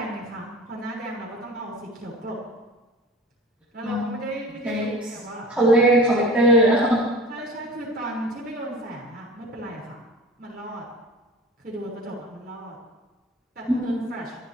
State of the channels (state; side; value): normal; both; correlation 0.39